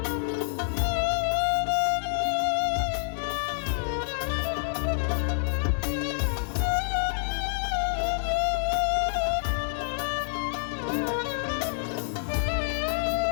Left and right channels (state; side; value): silent; right; digital silence